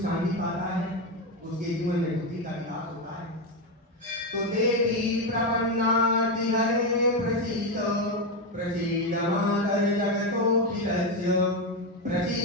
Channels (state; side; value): normal; both; correlation 0.09